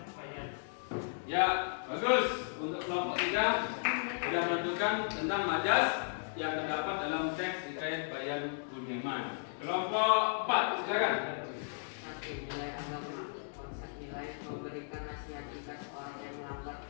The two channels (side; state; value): right; silent; digital silence